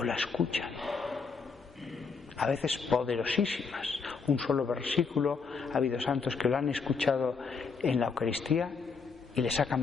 la escuchan. A veces poderosísimas. Un solo versículo, ha habido santos que lo han escuchado en la Eucaristía y les ha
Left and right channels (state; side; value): quieter; right; 5.1 dB